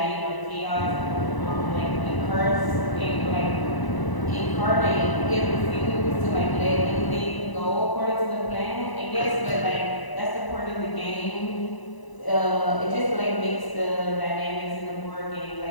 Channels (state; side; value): late; right; 1.0 ms